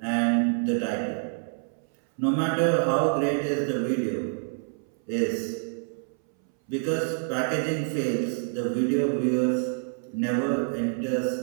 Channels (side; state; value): left; silent; 60 dB below the other